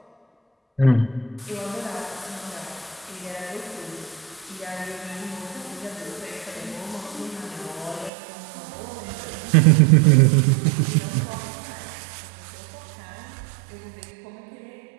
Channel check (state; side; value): drops out; left; at 8.1 s